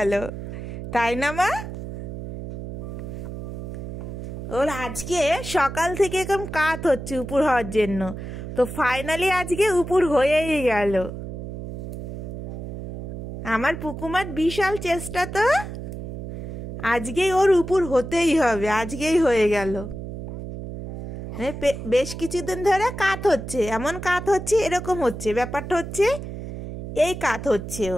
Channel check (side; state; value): right; noise; hum, 8 dB below the sound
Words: তাই না মা? ওর আজকে সকাল থেকে এরকম কাত হচ্ছে উপর হওয়ার জন্য, তো ফাইনালি আজকে উপর হয়েই গেল। আমার পুকুমার বিশাল চেষ্টা, তো আজকেই ওর উপর হতেই হবে, আজকেই হয়ে গেল। বেশ কিছুদিন ধরে কাত হচ্ছে, এমন কাত হচ্ছে, এরকম হচ্ছে, ব্যাপারটা হচ্ছে এই কাত হচ্ছে।